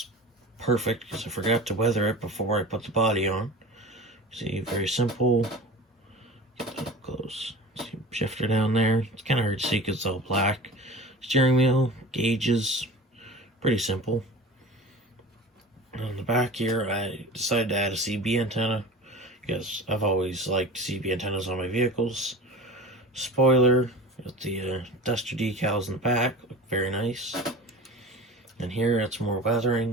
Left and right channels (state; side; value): normal; both; correlation 0.36